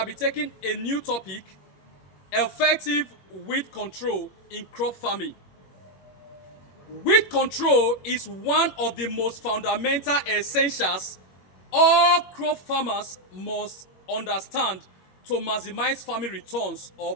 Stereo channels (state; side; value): late; right; 21 ms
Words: be taking a new topic, effective weed control in crop farming. Weed control is one of the most fundamental essentials all crop farmers must understand to maximize farming returns or